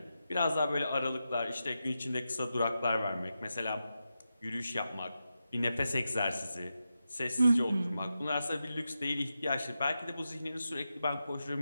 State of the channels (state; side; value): inverted; both; correlation -0.89